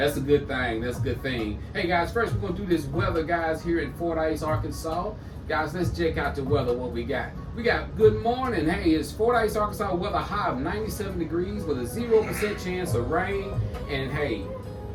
a good thing. Hey, guys, first we're going to do this weather, guys, here in Fordyce, Arkansas. Guys, let's check out the weather, what we got. We got good morning. Hey, it's Fordyce, Arkansas, weather high of 97 degrees with a 0% chance of rain. And, hey,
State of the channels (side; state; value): both; identical; correlation 1.00